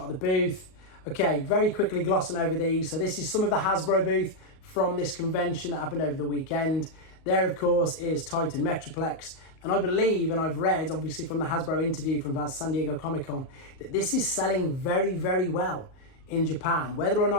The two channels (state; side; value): late; right; 38 ms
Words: of the booth. Okay, very quickly glossing over these. So this is some of the Hasbro booth from this convention that happened over the weekend. There, of course, is Titan Metroplex. And I believe, and I've read, obviously, from the Hasbro interview from San Diego Comic-Con, that this is selling very, very well in Japan. Whether or